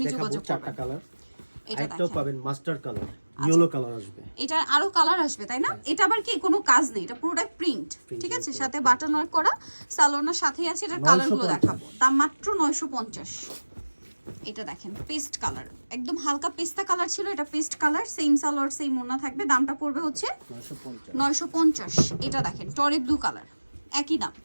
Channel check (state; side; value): inverted; both; correlation -1.00